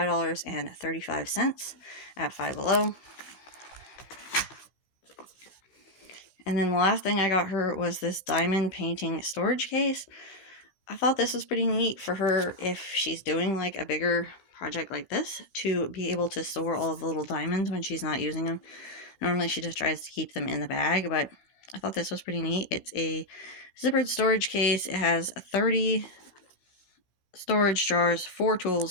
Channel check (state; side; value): late; right; 16 ms